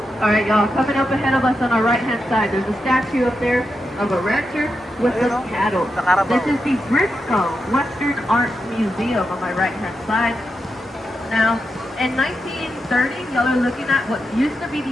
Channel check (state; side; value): normal; both; correlation 0.87